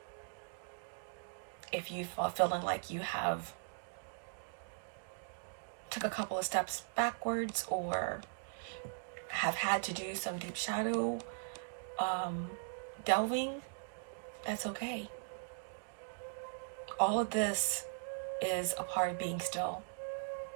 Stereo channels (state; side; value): silent; left; digital silence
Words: If you are feeling like you have took a couple of steps backwards or have had to do some deep shadow delving, that's okay. All of this is a part of being still.